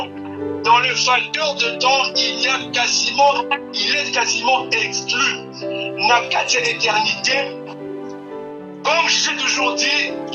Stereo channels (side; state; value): both; identical; correlation 1.00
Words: Dans le facteur de temps, il est quasiment exclu. Nakati éternité, comme je l'ai toujours dit,